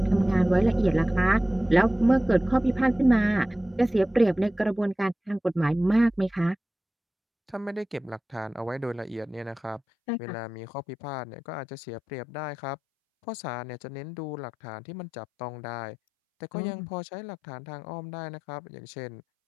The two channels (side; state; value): right; drops out; at 9.8 s